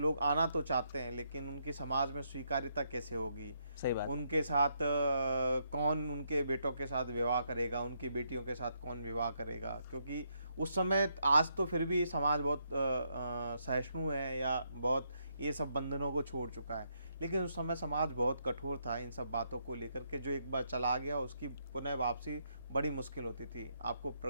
आना तो चाहते हैं लेकिन उनकी समाज में स्वीकार्यता कैसे होगी, सही बात। उनके साथ कौन उनके बेटों के साथ विवाह करेगा, उनकी बेटियों के साथ कौन विवाह करेगा, क्योंकि उस समय, आज तो फिर भी समाज बहुत सहिष्णु है या बहुत ये सब बंधनों को छोड़ चुका है, लेकिन उस समय समाज बहुत कठोर था इन सब बातों को लेकर के। जो एक बार चला गया उसकी पुनः वापसी बड़ी मुश्किल होती थी। आपको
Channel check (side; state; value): both; inverted; correlation -0.77